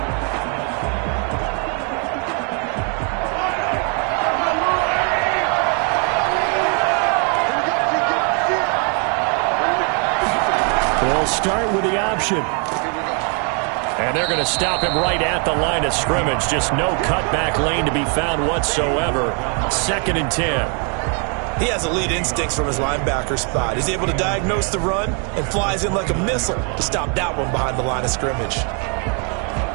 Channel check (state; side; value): quieter; left; 38.9 dB